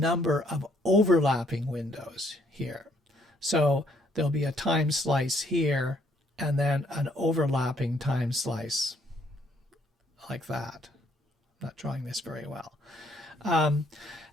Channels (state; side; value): normal; both; correlation 0.67